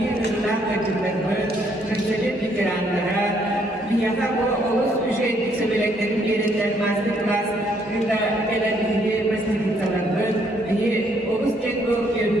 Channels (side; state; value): both; normal; correlation 0.69